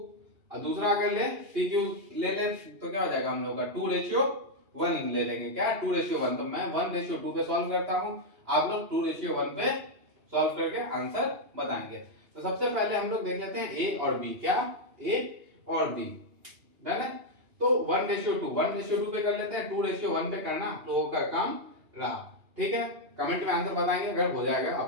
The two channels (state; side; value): late; left; 2.8 ms